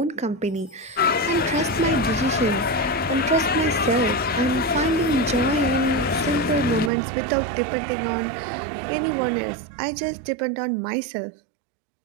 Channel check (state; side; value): drops out; left; at 6.9 s